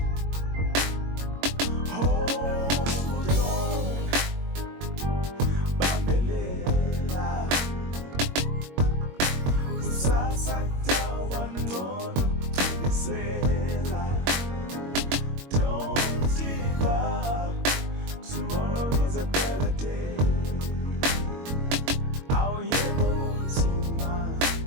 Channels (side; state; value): left; late; 22 ms